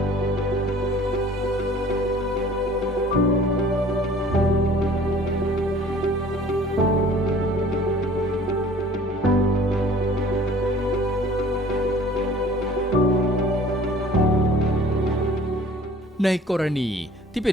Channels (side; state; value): both; normal; correlation 0.50